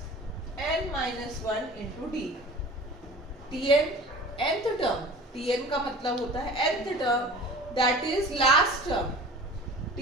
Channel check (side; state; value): both; normal; correlation 0.41